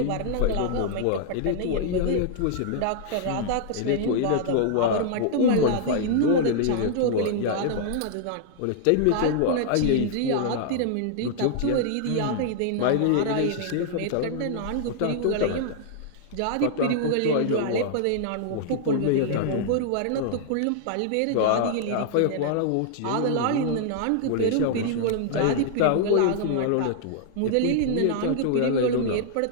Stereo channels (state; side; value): different; both; correlation -0.01